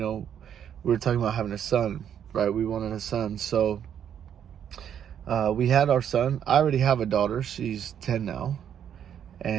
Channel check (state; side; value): quieter; left; 9.1 dB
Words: were talking about having a son, right? We wanted a son. So we had our son. I already have a daughter. She's 10 now.